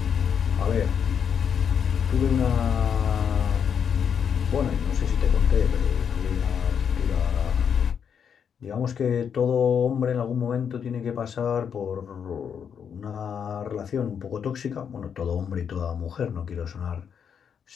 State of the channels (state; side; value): quieter; right; 7.5 dB